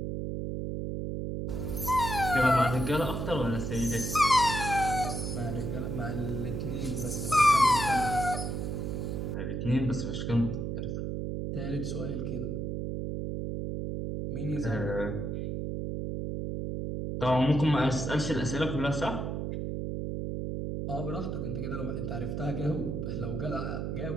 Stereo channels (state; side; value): noise; right; hum, 3 dB below the sound